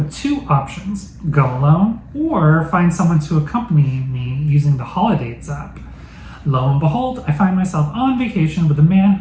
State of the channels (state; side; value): identical; both; correlation 1.00